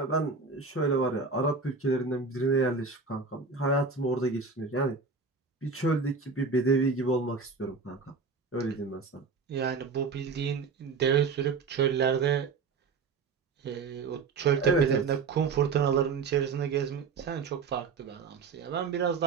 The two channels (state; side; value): quieter; left; 4.7 dB